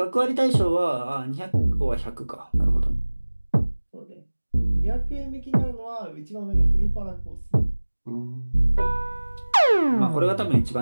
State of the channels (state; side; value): inverted; both; correlation -1.00